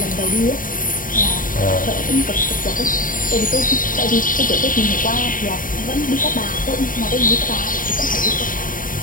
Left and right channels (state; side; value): late; right; 0.40 ms